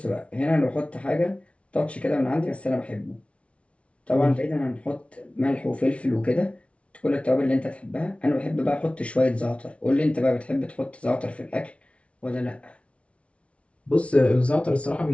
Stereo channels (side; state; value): right; late; 0.062 ms